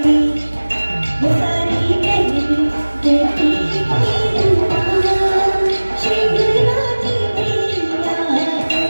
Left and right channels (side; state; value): both; inverted; correlation -1.00